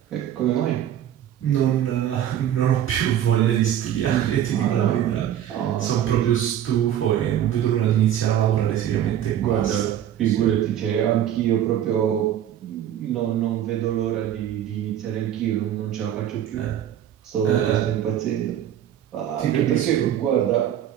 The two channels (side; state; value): left; quieter; 10.8 dB